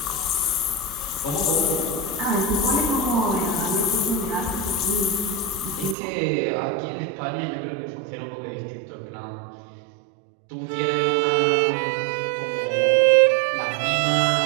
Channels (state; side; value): drops out; left; at 6.0 s